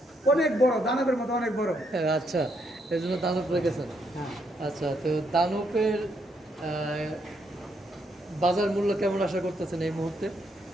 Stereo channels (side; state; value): both; normal; correlation 0.75